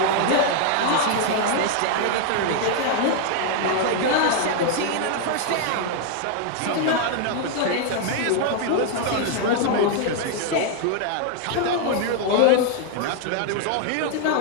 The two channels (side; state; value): both; different; correlation 0.00